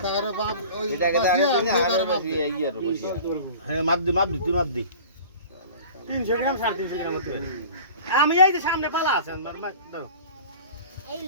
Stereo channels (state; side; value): inverted; both; correlation -0.41